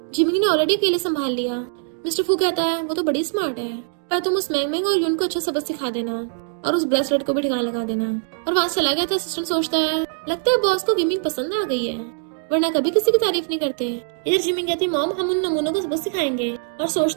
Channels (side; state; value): left; silent; 58 dB below the other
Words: जिमिंग ने ऑलरेडी अकेले संभाल लिया। मिस्टर फू कहता है, वो तो बड़ी स्मार्ट है, पर तुम उस मैंग और यून को अच्छा सबक सिखा देना और उस ब्रेसलेट को भी ठिकाना लगा देना। और वहाँ चला गया था। असिस्टेंट सोचता है, लगता है बॉस को गेमिंग पसंद आ गई है। वरना कभी किसी की तारीफ नहीं करते। इधर जिमिंग कहती मॉम हम उन नमूनों को सबक सिखाएंगे, और